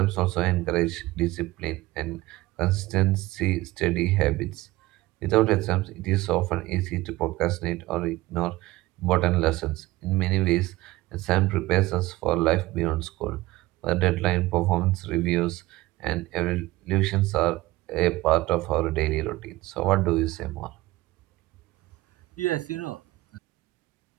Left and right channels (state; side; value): quieter; left; 18.8 dB